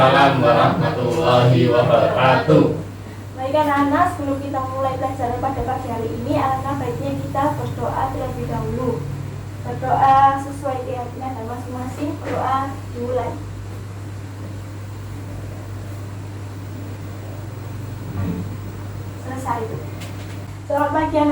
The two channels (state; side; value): identical; both; correlation 1.00